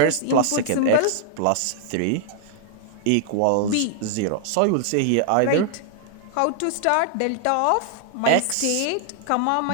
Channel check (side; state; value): both; different; correlation -0.01